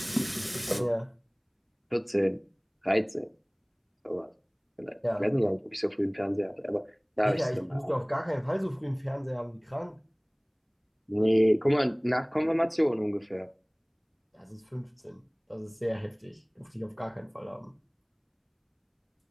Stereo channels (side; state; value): both; identical; correlation 1.00